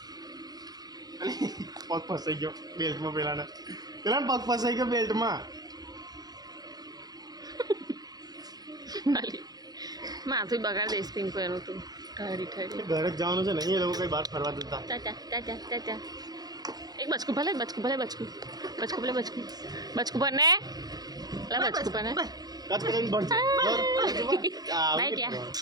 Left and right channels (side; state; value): left; late; 0.19 ms